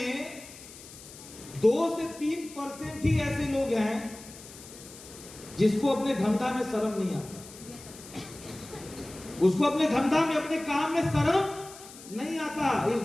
2 से 3% ही ऐसे लोग हैं जिसको अपने धंधा में शर्म नहीं आता, उसको अपने धंधा में, अपने काम में शर्म नहीं आता। इस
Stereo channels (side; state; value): left; noise; hiss, 17 dB below the sound